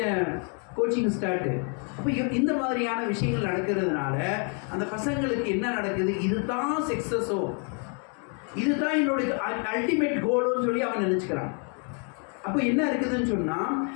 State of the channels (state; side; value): quieter; right; 39.7 dB